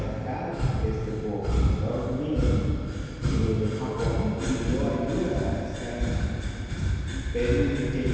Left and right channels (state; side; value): identical; both; correlation 1.00